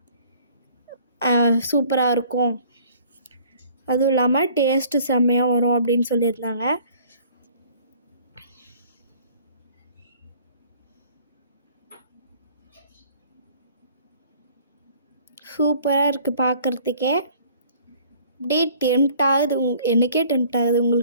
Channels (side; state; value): both; inverted; correlation -0.54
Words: சூப்பராக இருக்கும். அதுவும் இல்லாமல் டேஸ்ட்டு செம்மையாக வரும் அப்படின்னு சொல்லியிருந்தாங்க. சூப்பராக இருக்குது பார்க்குறதுக்கே. அப்படியே டெம்ட் ஆகுது. எனக்கே டெம்ட் ஆகுது.